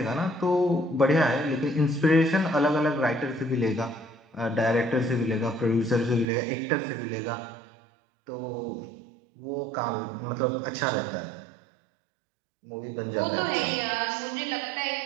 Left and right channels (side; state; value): left; drops out; at 6.2 s